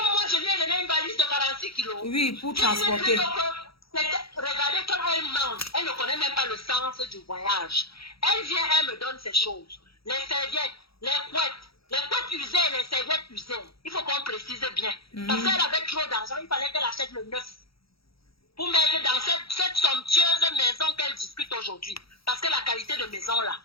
moi, je lui ai donné une valise de 46 kilos. Oui, pour transporter. Regardez comme elle mange. Elle ne connaît même pas le sens du voyage. Elle vient, elle me donne ces choses. Les serviettes, les couettes usées, les serviettes usées. Il faut qu'on précise bien. Parce qu'elle avait trop d'argent, il fallait qu'elle achète le neuf. Pour mettre dans cette somptueuse maison qu'elle discute aujourd'hui. Parce que la qualité de maison là,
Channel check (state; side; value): late; right; 0.75 ms